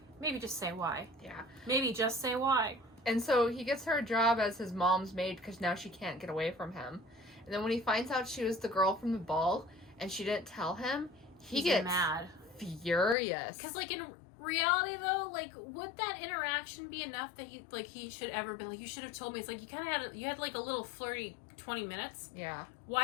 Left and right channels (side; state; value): right; drops out; at 13.2 s